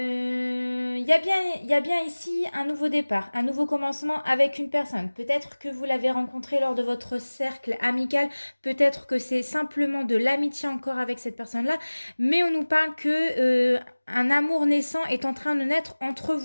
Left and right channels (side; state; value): both; inverted; correlation -1.00